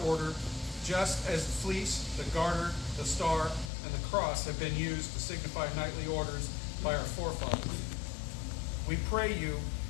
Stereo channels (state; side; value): drops out; right; at 3.7 s